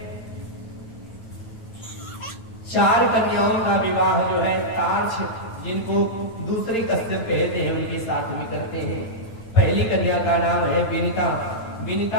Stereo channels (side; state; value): right; late; 8.8 ms